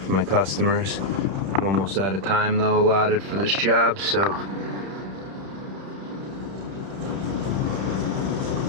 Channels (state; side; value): late; left; 31 ms